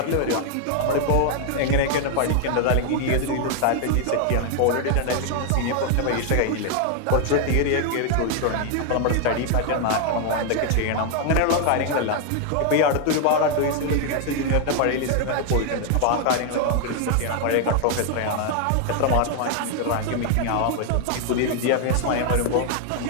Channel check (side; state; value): both; different; correlation 0.00